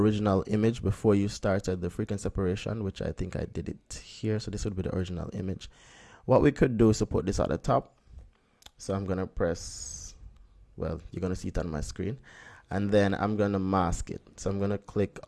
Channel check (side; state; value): both; identical; correlation 1.00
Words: image before you started the frequency separation, which I think I did it here. So this would be the original image. What we could do is to put this at the top. So I'm gonna press, well, you're gonna see it on my screen, and then I'm gonna mask it. So I'm gonna click